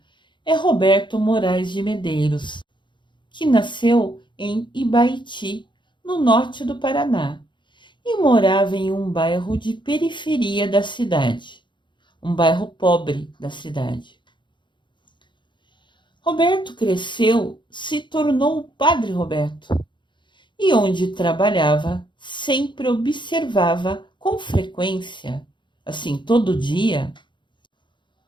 é Roberto Moraes de Medeiros, que nasceu em Ibaiti, no norte do Paraná. e morava em um bairro de periferia da cidade, um bairro pobre da cidade. Roberto cresceu, se tornou o Padre Roberto, e onde trabalhava, sempre observava com frequência, assim todo dia,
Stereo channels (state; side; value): late; right; 0.23 ms